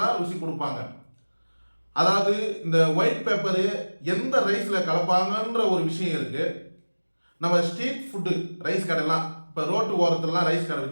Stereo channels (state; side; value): inverted; both; correlation -1.00